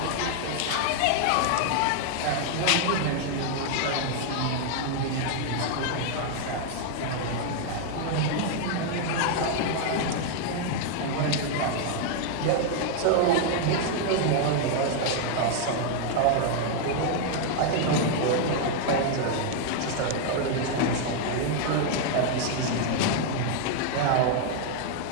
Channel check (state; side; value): different; both; correlation 0.00